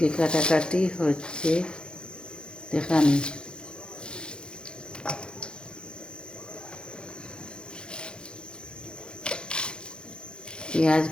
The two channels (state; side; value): late; right; 0.051 ms